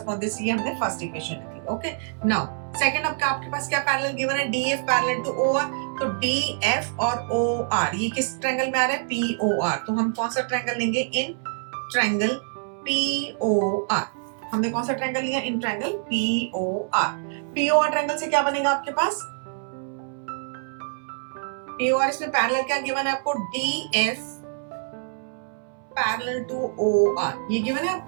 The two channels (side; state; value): left; silent; 61 dB below the other